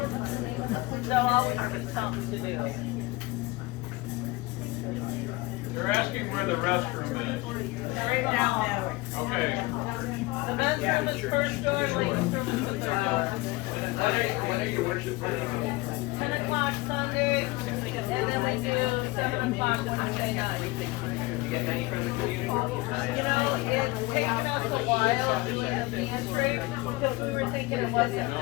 there'll always be something to do. They're asking where the restroom is. Right now. Okay. The men's room is first door, ladies' room is the third door. When are your worship Fridays? 10 o'clock Sunday, and then we do 7 o'clock Wednesday night. You get any from the community? You know, it's taken us a while being a pantry, because we were thinking it wasn't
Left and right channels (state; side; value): quieter; right; 22.0 dB